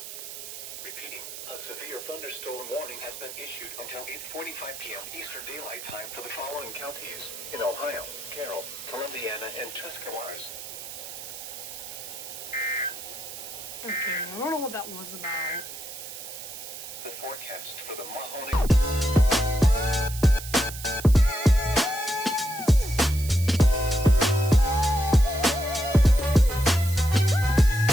Repeating, a severe thunderstorm warning has been issued until 8:45 p.m. Eastern Daylight Time for the following counties in Ohio: Carroll, Columbiana, and Tuscarawas. Okay, I don't know what that was about. The forecast for the Mahoney...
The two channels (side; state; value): right; noise; hiss, 11 dB below the sound